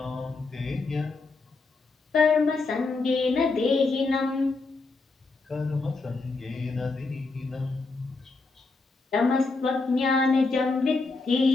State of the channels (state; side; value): quieter; right; 3.8 dB